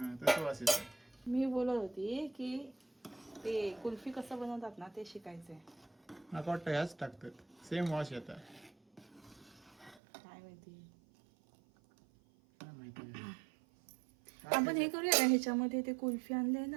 तसं वास येतं. मी बोलत होती की ते कुल्फी कसं बनवतात ना ते शिकायचंय. मला वाटतं ह्याच टाकतात, सेम वास येतं. काय माहिती. काय माहिती. आपण हे करूया ना, ह्याच्यामध्ये ते कुल्फी आणले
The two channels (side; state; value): left; drops out; at 10.0 s